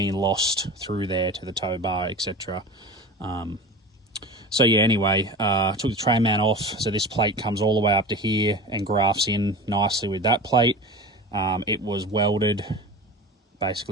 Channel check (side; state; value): both; normal; correlation 0.33